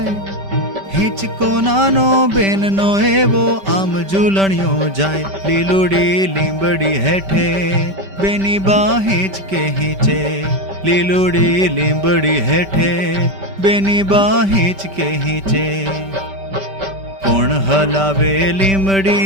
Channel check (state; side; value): late; left; 5.1 ms